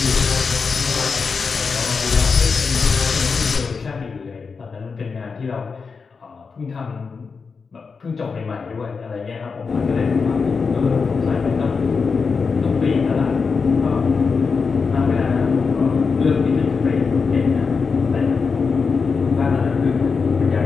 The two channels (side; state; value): right; quieter; 5.1 dB